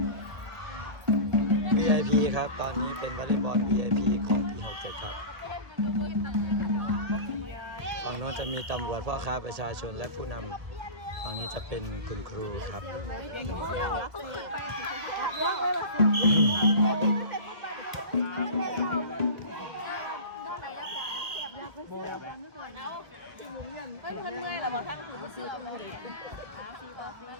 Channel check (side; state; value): left; late; 1.4 ms